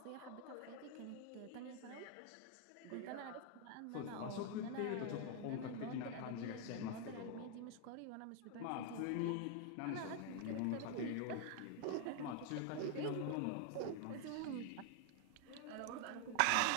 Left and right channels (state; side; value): different; both; correlation 0.00